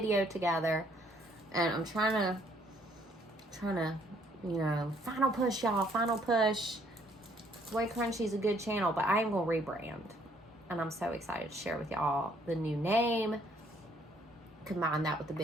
together, and I'm trying to, you know, final push, y'all, final push. WayCrunchy is a good channel, but I am going to rebrand, and I'm so excited to share with y'all the new name, combine that with the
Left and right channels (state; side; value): normal; both; correlation 0.65